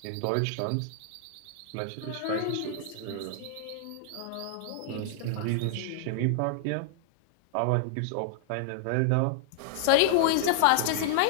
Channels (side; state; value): both; different; correlation -0.01